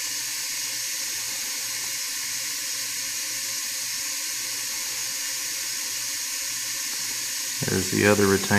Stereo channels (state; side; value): identical; both; correlation 1.00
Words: There's the other